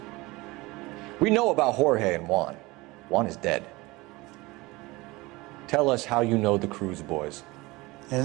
We know about Jorge and Juan. Juan is dead. Tell us how you know the Cruz boys.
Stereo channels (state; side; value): quieter; left; 22.0 dB